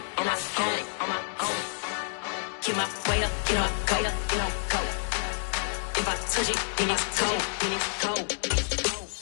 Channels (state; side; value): silent; right; digital silence